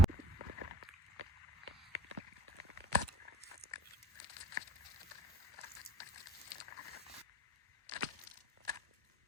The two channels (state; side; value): normal; both; correlation 0.46